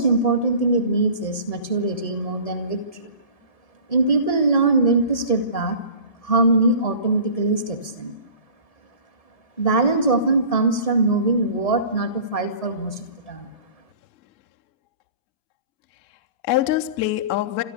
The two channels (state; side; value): late; right; 1.7 ms